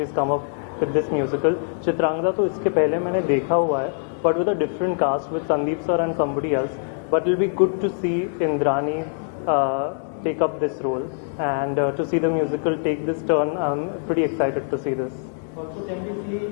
come up with this musical. Chitrangada तो इसके पहले मैंने देखा हुआ है, but with a different cast with Sandeep sir and somebody else. But it'll be good to see Indrani take up this role, and to see the musical take this turn. I'm pretty excited to see this. Also, can we see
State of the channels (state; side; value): silent; right; digital silence